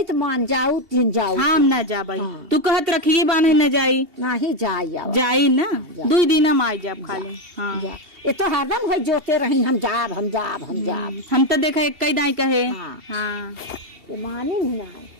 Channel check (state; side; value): late; left; 2.8 ms